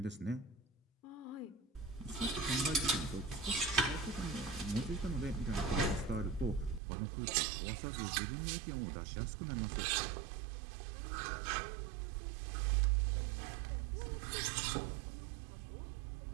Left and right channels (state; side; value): drops out; left; at 6.8 s